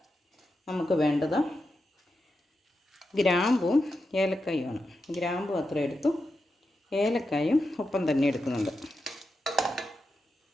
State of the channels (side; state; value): both; normal; correlation 0.88